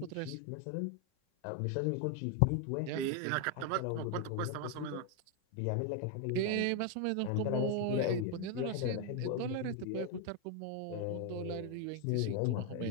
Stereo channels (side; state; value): both; different; correlation 0.01